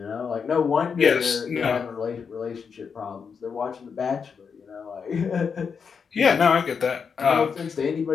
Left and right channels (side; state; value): right; quieter; 6.1 dB